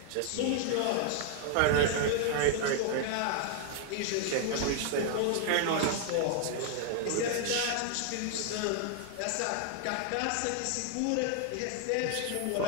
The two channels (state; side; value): different; both; correlation 0.00